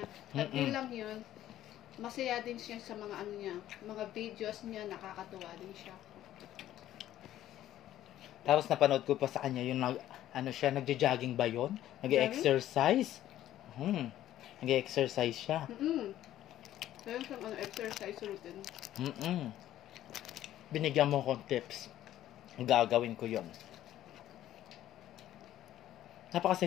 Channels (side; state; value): right; quieter; 12.9 dB